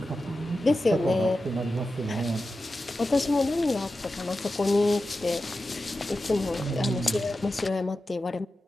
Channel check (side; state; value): both; normal; correlation 0.92